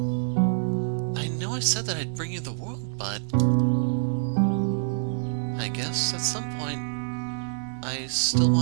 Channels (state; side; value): silent; left; 57 dB below the other